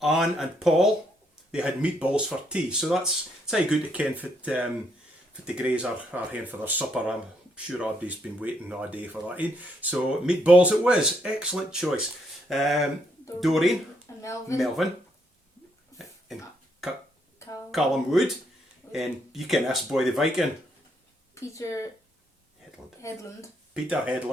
Anne and Paul. They had meatballs for tea. So it's how good to ken for the Greys are here for their supper. I'm sure everybody's been waiting all day for that. So meatballs it was. Excellent choice. Doreen. And Melvin. And Callum Wood. And you can ask Boy the Viking. Peter Headland. Peter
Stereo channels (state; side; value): normal; both; correlation 0.74